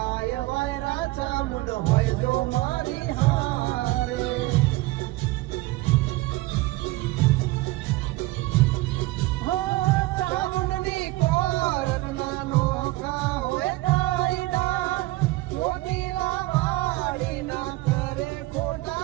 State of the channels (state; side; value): quieter; left; 19.6 dB